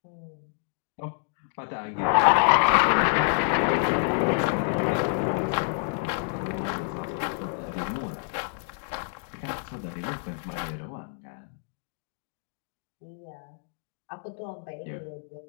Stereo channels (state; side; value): silent; right; digital silence